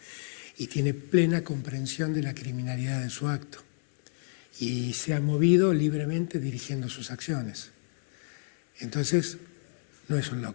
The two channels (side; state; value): right; silent; digital silence